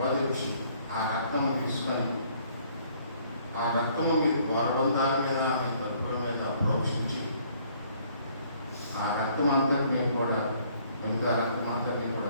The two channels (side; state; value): both; inverted; correlation -0.62